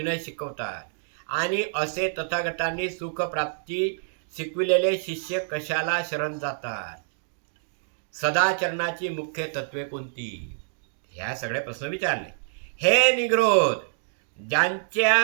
शिकवतात आणि असे तथागतांनी सुख प्राप्ती शिकविलेले शिष्य कशाला शरण जातात. सदाचरणाची मुख्य तत्वे कोणती, ह्या सगळे प्रश्न विचारले. हे निग्रोध,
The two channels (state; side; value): silent; left; digital silence